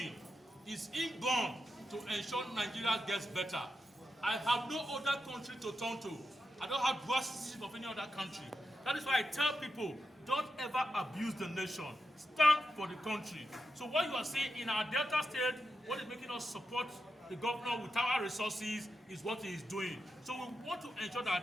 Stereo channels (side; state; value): both; normal; correlation 0.87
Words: It's inborn to ensure Nigeria gets better. I have no other country to turn to. I don't have dual citizenship of any other country. That is why I tell people, don't ever abuse the nation. Stand for the country. So what you are saying in our Delta State, what is making us support the governor with our resources is what he is doing. So we want to ensure